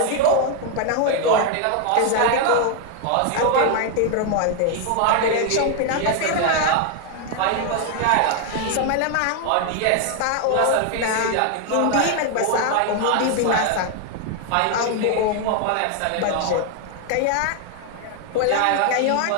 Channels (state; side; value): different; both; correlation 0.00